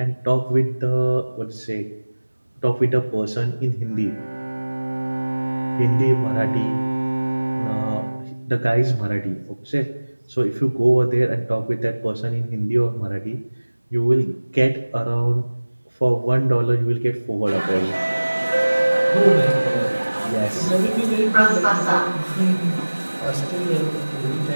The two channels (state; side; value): inverted; both; correlation -1.00